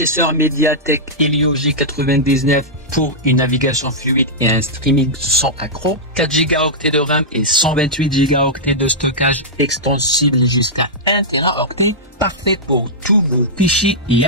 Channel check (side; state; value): both; normal; correlation -0.11